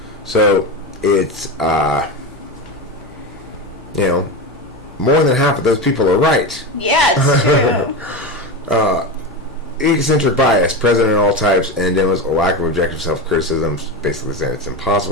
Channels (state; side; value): normal; both; correlation 0.20